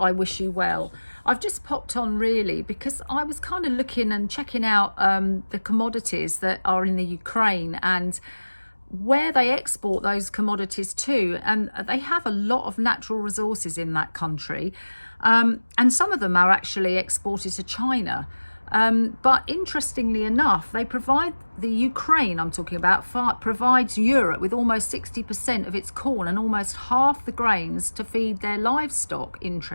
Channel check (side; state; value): both; inverted; correlation -1.00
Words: wish you well. I've just popped on really because I was kind of looking and checking out the commodities that are in the Ukraine and where they export those commodities to, and they have a lot of natural resources in that country, and some of them are actually exported to China, but interestingly enough the Ukraine I'm talking about provides Europe with almost 60% of its corn and almost half the grains to feed their livestock.